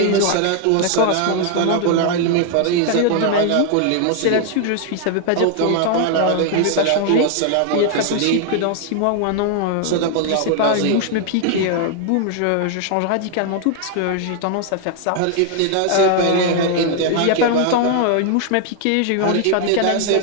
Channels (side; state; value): both; different; correlation 0.00